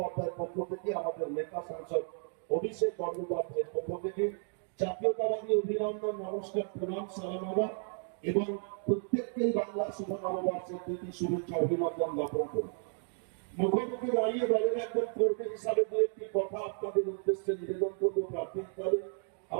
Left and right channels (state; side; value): silent; left; 56 dB below the other